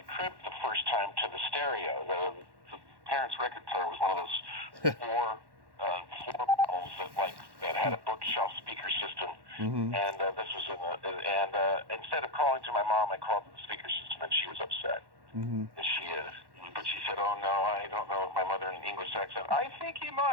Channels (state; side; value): late; left; 1.1 ms